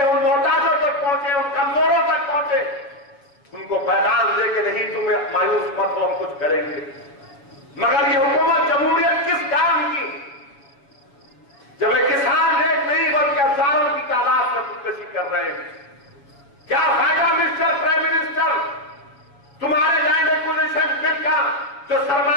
محتاجوں تک پہنچے، ان کمزوروں تک پہنچے، ان کو پیغام دے کہ نہیں تم مایوس مت ہو، ہم کچھ کریں گے. مگر یہ حکومت جمہوریت کس کام کی جب ایک کسان ایک نہیں بلکہ ہزاروں کی تعداد میں خودکشی کر رہے ہیں؟ کیا فائدہ مسٹر پرائم منسٹر تمہارے لینڈ ایکوزیشن بل کا جو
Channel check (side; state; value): right; late; 7.2 ms